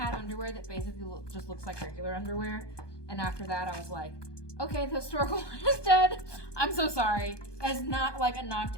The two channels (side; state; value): right; late; 1.2 ms